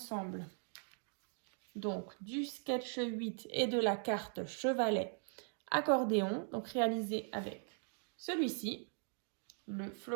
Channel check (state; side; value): silent; left; 51 dB below the other